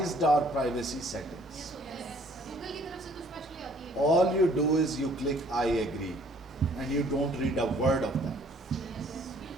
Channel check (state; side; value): normal; both; correlation 0.59